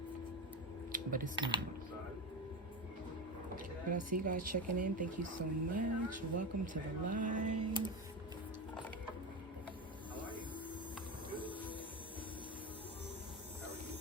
But it's not. But I see you guys checking in. Thank you so much. Welcome to the live.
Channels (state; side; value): normal; both; correlation 0.20